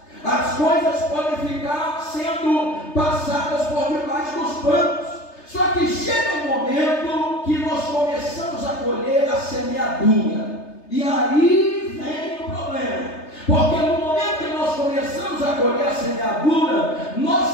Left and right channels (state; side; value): late; right; 3.3 ms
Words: as coisas podem ficar sendo passadas por debaixo dos panos. Só que chega um momento que nós começamos a colher a semeadura, e aí vem o problema, porque no momento que nós começamos a colher a semeadura,